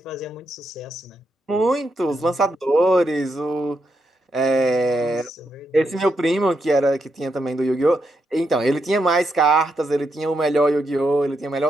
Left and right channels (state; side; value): normal; both; correlation 0.82